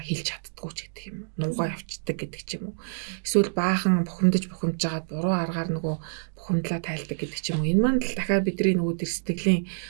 чаддгүй ч гэдэг юм уу. Нуугаа явцдаг гэдэг ч юм уу. Эсвэл баахан бухимдаж жагаад буруу аргаар нөгөө бухимдлаа тайлдаг гэдэг ч юм уу. Энэ маань л дахиад бидний нөгөө тэр сэтгэлийн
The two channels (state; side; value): silent; left; digital silence